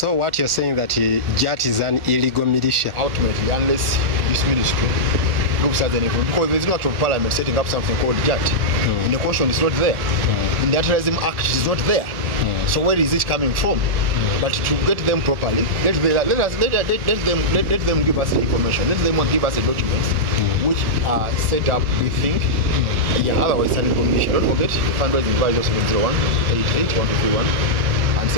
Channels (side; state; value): left; late; 1.7 ms